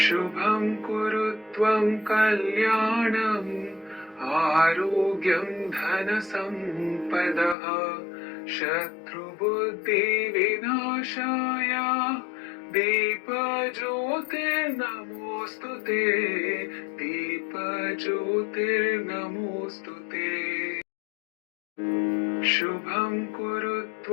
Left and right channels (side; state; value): right; drops out; at 7.6 s